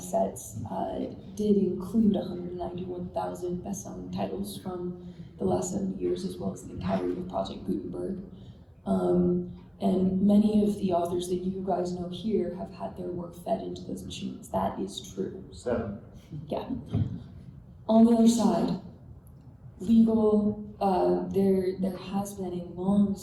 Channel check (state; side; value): identical; both; correlation 1.00